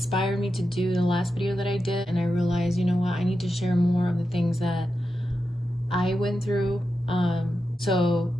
me to do the last video that I did, and I realized, you know what, I need to share more of the things that I went through. So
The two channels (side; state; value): both; normal; correlation 0.89